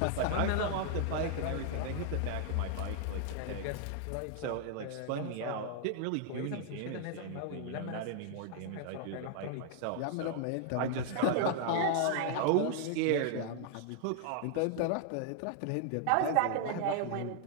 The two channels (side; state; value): both; different; correlation 0.00